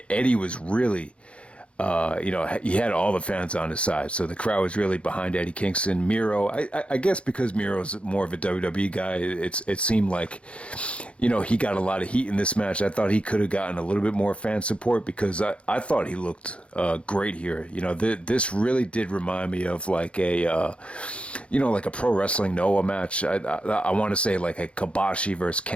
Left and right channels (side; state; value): right; late; 0.060 ms